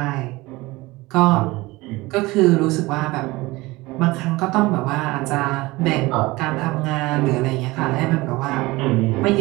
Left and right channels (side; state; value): left; quieter; 21.0 dB